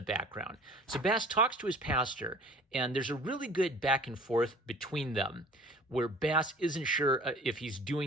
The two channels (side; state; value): both; normal; correlation 0.47